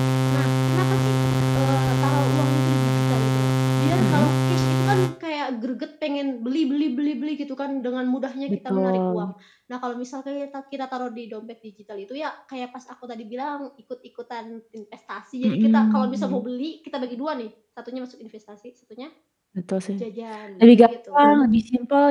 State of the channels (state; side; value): identical; both; correlation 1.00